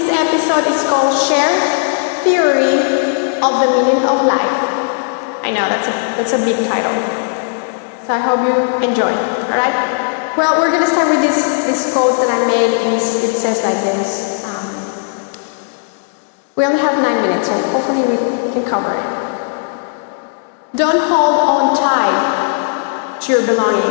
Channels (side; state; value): right; silent; digital silence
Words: episode is called Sher Theory of the Meaning of Life. I know, that's a big title, so I hope you enjoy, alright? Well, we're going to start with this quote that I made, and it says like this. We only have 9 minutes, so hopefully we can cover it. Don't hold on tight to your